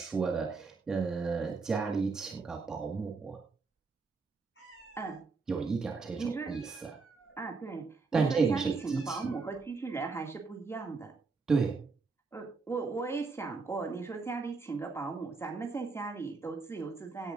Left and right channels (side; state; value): left; quieter; 4.3 dB